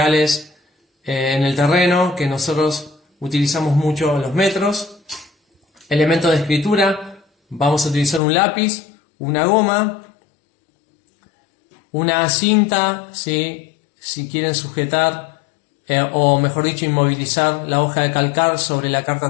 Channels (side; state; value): right; drops out; at 8.2 s